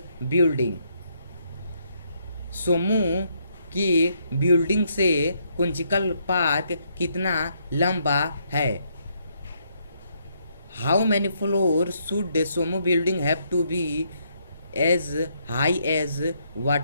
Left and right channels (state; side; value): inverted; both; correlation -0.73